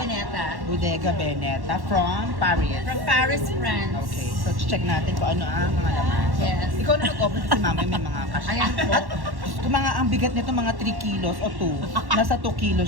Bodega Veneta from Paris. From Paris, France. Okay, so check natin kung ano ang mga laman. So, Yes. ikaw na nag-open si mama may mga cash. Ayan po. At kung mga ang bigat nito mga 3 kilos o 2. Nasa 2 kilos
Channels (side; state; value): left; late; 1.1 ms